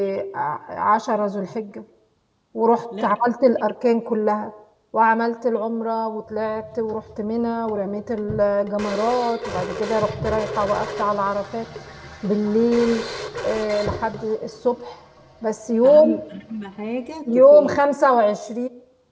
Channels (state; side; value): identical; both; correlation 1.00